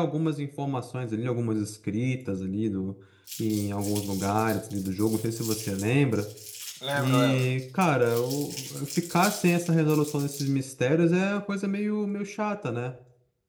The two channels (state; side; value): identical; both; correlation 1.00